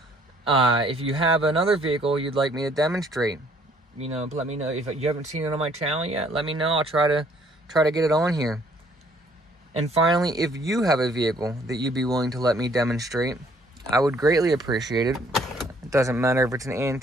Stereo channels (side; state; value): both; normal; correlation 0.62